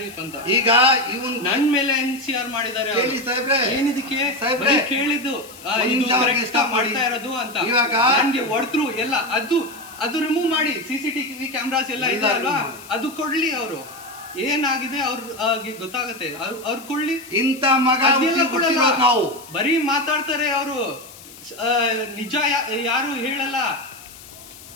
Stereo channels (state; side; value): noise; left; hiss, 19 dB below the sound